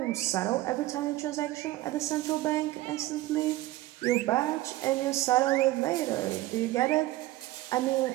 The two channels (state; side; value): quieter; left; 17.0 dB